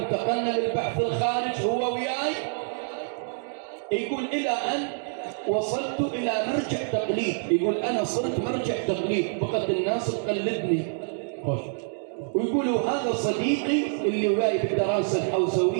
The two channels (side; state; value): left; silent; digital silence